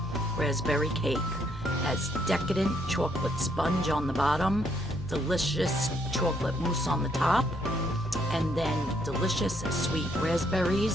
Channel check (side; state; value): both; normal; correlation 0.71